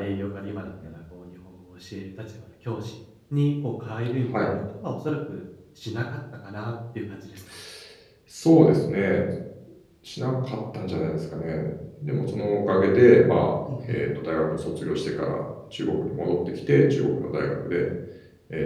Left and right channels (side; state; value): both; identical; correlation 1.00